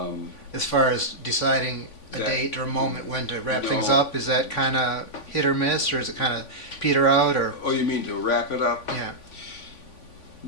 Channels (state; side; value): late; right; 3.5 ms